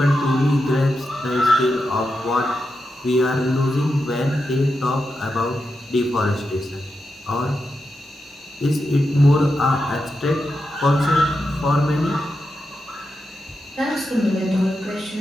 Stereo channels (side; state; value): both; normal; correlation 0.88